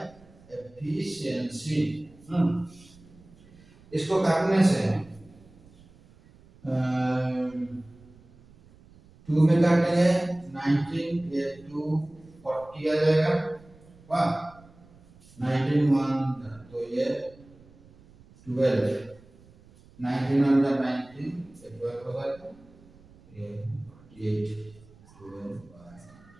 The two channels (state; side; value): noise; right; rumble, 25 dB below the sound